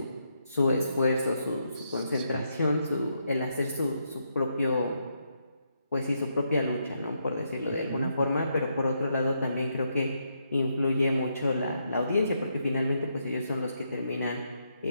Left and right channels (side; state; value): both; inverted; correlation -0.79